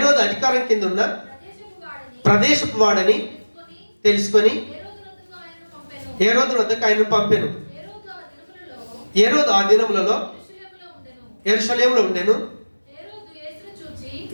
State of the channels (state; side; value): inverted; both; correlation -1.00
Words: అధికారం కింద ఉన్న ప్రదేశపు వాడని తెలుసుకొని హేరోదు వద్దకు ఆయనను పంపెను. హేరోదు ఆ దినములలో యెరూషలేములో ఉండెను.